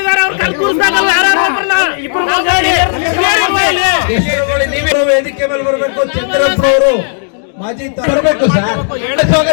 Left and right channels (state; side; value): silent; right; digital silence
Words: ವೇದಿಕೆ ಮೇಲೆ ಬರಬೇಕು. ಚಂದ್ರಪ್ಪನವರು ಮಾಜಿ ಬರಬೇಕು ಸರ್.